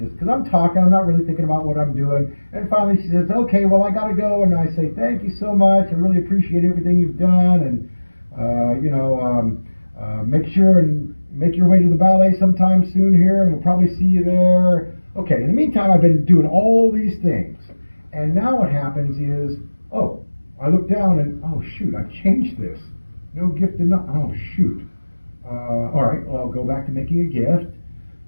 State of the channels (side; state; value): both; inverted; correlation -1.00